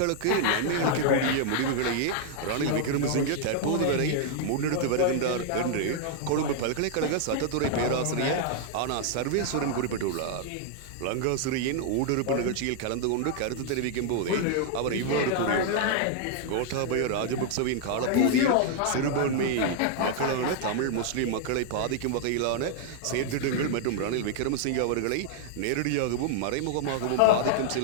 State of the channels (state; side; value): different; both; correlation -0.01